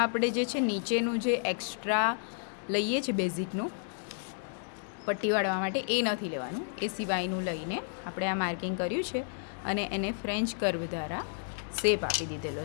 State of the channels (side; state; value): right; silent; digital silence